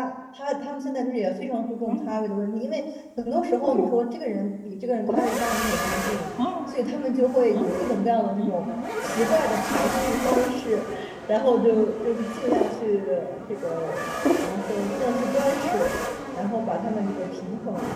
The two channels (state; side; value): identical; both; correlation 1.00